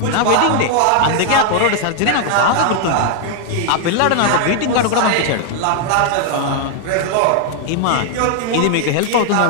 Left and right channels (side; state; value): both; different; correlation 0.00